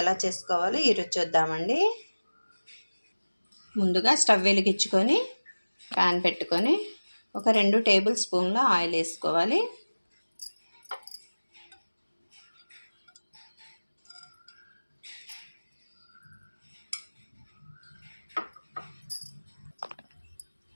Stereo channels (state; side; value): inverted; both; correlation -1.00